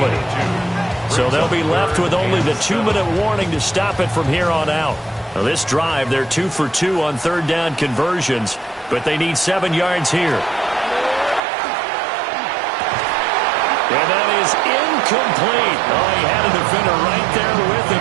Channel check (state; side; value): drops out; left; at 11.4 s